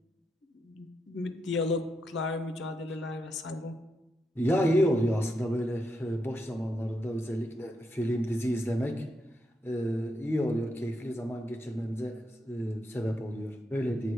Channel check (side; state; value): both; normal; correlation 0.82